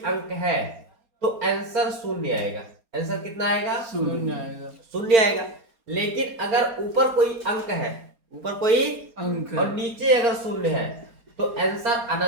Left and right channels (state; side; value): late; left; 4.3 ms